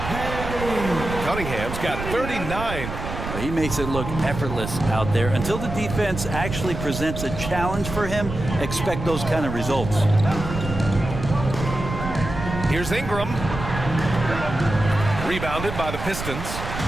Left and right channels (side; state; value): right; noise; rumble, 7 dB below the sound